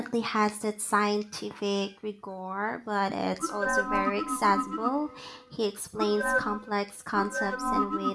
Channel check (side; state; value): both; identical; correlation 1.00